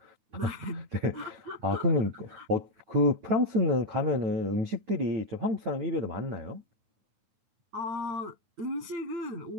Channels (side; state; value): left; late; 9.3 ms